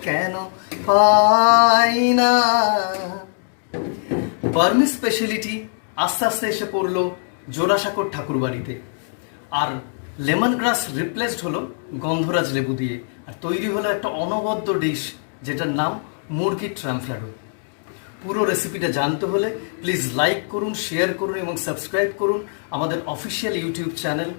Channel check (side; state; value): right; silent; digital silence